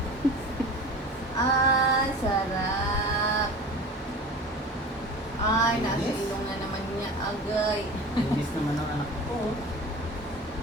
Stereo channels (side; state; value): both; normal; correlation 0.36